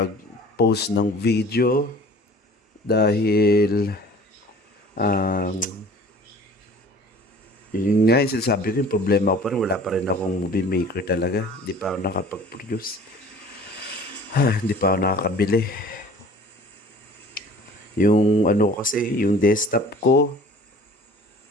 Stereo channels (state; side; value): normal; both; correlation 0.47